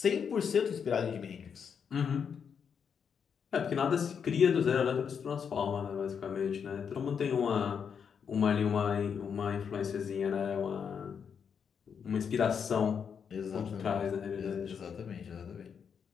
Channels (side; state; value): right; quieter; 7.0 dB